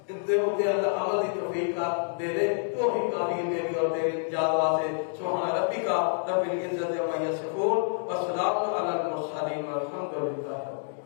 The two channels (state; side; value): silent; right; digital silence